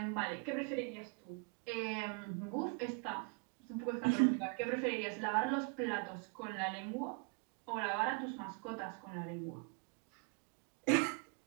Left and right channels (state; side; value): quieter; left; 34.9 dB